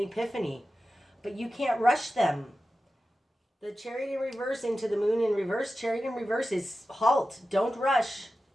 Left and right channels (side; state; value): both; normal; correlation 0.93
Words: but you can't rush them. The Chariot in reverse into the Moon in reverse. Chariot in reverse is halt. Don't rush.